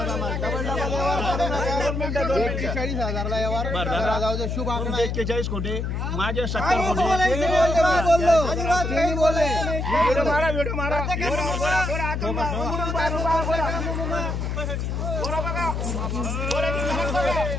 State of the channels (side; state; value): left; noise; hum, 2 dB below the sound